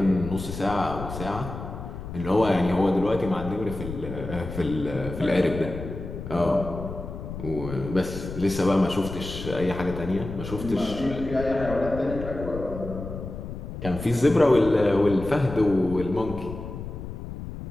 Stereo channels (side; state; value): left; noise; rumble, 9 dB below the sound